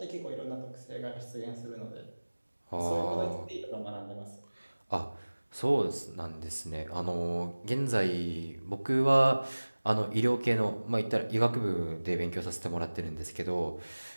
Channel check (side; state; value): both; inverted; correlation -1.00